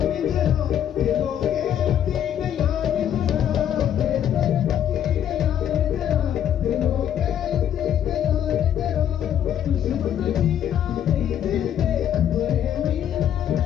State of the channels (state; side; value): quieter; right; 10.0 dB